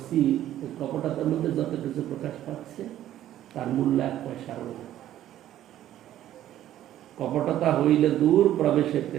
ওই কপটতার মধ্যে যত কিছু প্রকাশ পাচ্ছে তার মূল্য 1 পয়সার না। কপটতা হইলে দূর, প্রবেশে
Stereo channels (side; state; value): left; quieter; 12.5 dB